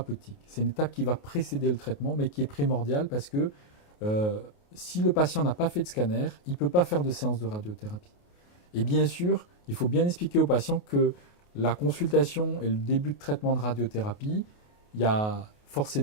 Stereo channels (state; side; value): late; right; 28 ms